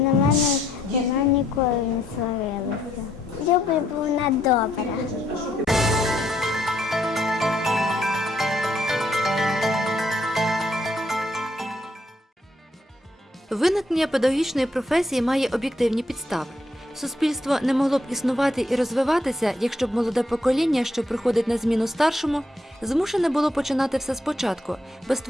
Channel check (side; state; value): both; normal; correlation 0.73